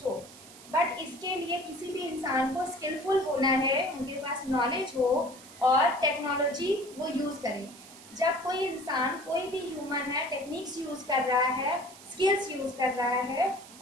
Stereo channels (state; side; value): noise; right; hiss, 19 dB below the sound